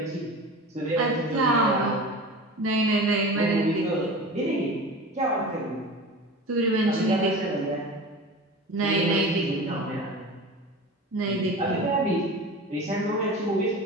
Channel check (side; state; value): both; normal; correlation 0.33